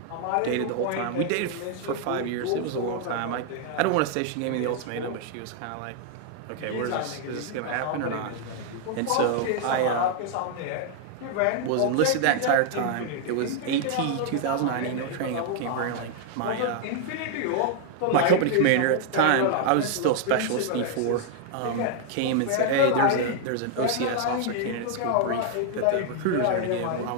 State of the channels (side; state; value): both; different; correlation 0.00